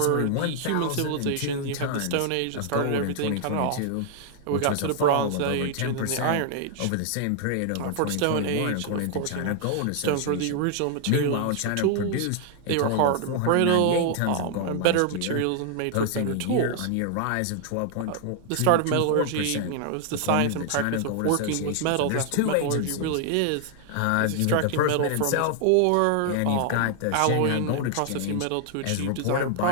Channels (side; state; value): both; different; correlation 0.00